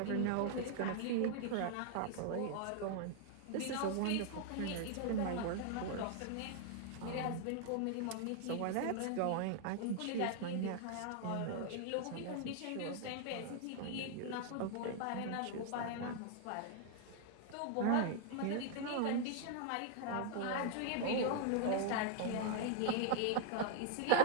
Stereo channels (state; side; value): different; both; correlation 0.00